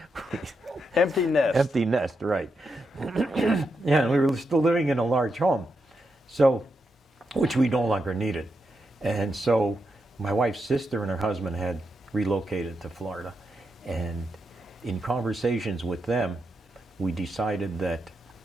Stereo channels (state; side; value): normal; both; correlation 0.84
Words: Empty nest. Empty nest, right. Yeah, and we were still living in a large home, so, which we no longer needed. And so my wife's sister and her husband had relocated to Florida. And in conversations with them, we decided that